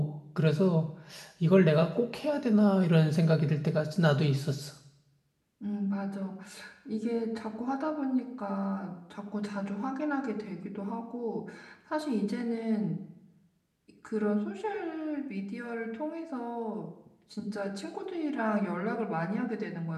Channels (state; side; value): identical; both; correlation 1.00